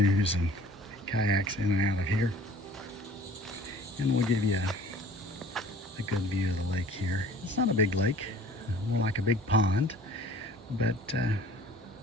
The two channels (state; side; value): normal; both; correlation 0.49